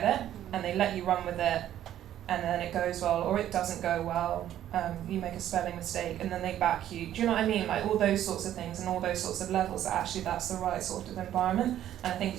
it and they let you run with it, and then it goes well or it doesn't go well. You make a spelling mistake and then they back you. Do you know what I mean? Like, all those sorts of things and all those sorts of levels, that actually that's the right sort of environment. And I think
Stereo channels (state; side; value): quieter; left; 11.7 dB